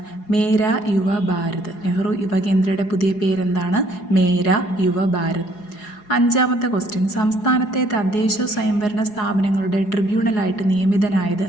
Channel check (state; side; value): late; right; 4.8 ms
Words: മേരാ യുവ ഭാരത്. നെഹ്റു യുവകേന്ദ്രയുടെ പുതിയ പേരെന്താണ്? മേരാ യുവ ഭാരത്. അഞ്ചാമത്തെ ക്വസ്റ്റ്യൻ, സംസ്ഥാനത്തെ തദ്ദേശ സ്വയംഭരണ സ്ഥാപനങ്ങളുടെ ട്രിബ്യൂണലായിട്ട് നിയമിതനായത്